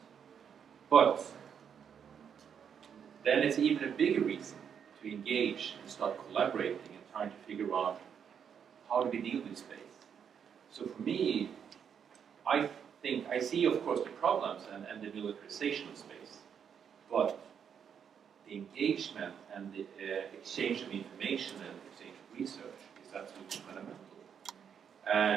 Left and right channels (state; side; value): quieter; left; 7.7 dB